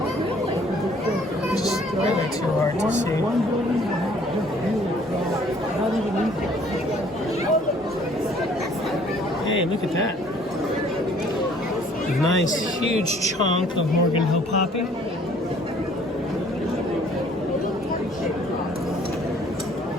Just really too hard to see. Hey, look at that. Nice huge chunk of Morgan Hill poppy. I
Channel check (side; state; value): both; normal; correlation 0.58